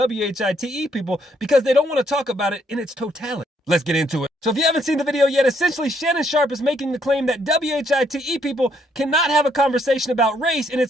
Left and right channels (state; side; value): normal; both; correlation 0.71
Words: people because they don't want to talk about it in its totality. Let's get into it. So if you haven't seen the video yet, essentially Shannon Sharpe is making the claim that WHITE people cannot have a conversation about race in